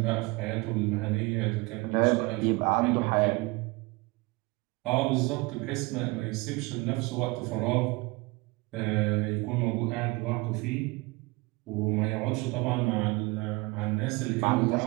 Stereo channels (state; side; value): quieter; left; 24.5 dB